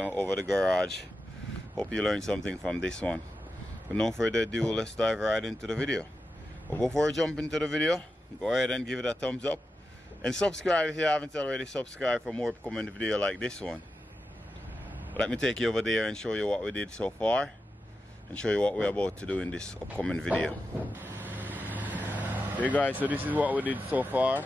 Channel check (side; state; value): both; normal; correlation 0.90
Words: over the garage. Hope you learned something from this one. But no further ado, let's dive right into the video. But before we jump into the video, go ahead and give it a thumbs up and subscribe if you haven't already subscribed for more upcoming video like this one. Let me take you over there and show you what we did so far and show you what we're about to do in this upcoming video. Hey guys, so this is what we did so far.